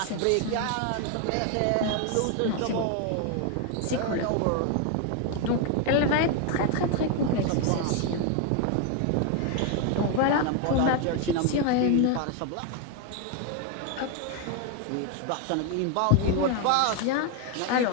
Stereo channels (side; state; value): both; different; correlation 0.01